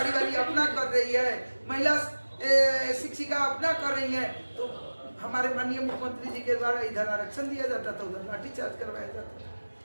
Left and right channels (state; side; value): inverted; both; correlation -1.00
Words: वाली अपना कर रही है, महिला शिक्षिका अपना कर रही है, तो हमारे माननीय मुख्यमंत्री जी के द्वारा इधर आरक्षण दिया जाता था, उधर लाठीचार्ज करवाया जाता